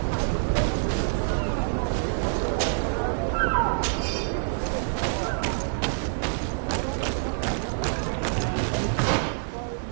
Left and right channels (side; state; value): left; silent; digital silence